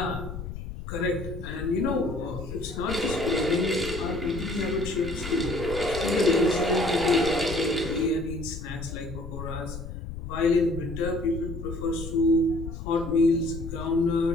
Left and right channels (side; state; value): left; noise; rumble, 9 dB below the sound